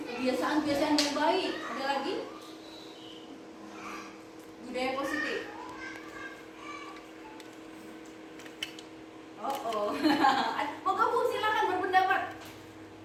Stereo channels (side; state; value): both; identical; correlation 1.00